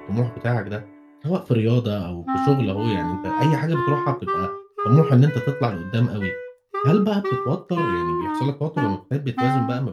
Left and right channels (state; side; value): identical; both; correlation 1.00